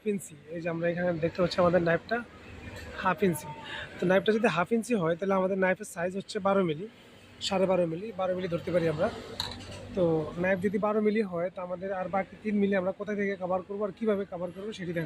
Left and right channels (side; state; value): both; identical; correlation 1.00